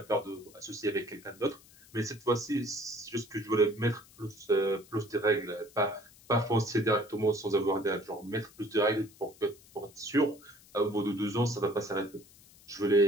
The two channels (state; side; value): noise; left; hiss, 25 dB below the sound